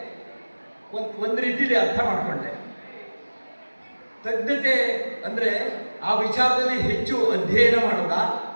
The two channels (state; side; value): inverted; both; correlation -1.00